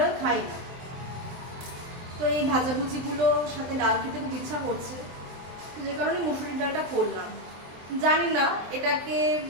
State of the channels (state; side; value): late; left; 23 ms